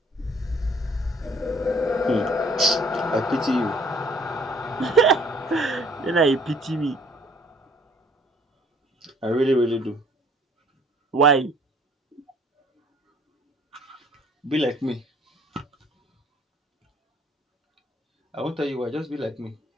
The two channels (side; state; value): both; normal; correlation 0.58